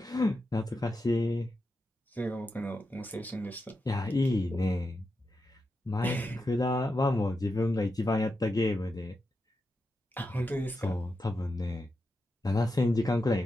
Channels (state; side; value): normal; both; correlation 0.88